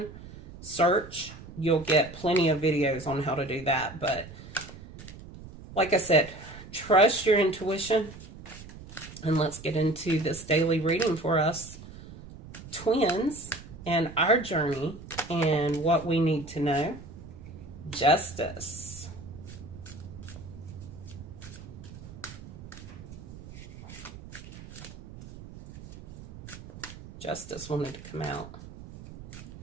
search, you'll get plenty of videos on how to do that. But like I said, trust your intuition. And let's get into this daily reading for us twins and our journey and what we need to know. Justice. Justice wanted to come out.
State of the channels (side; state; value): right; noise; rumble, 15 dB below the sound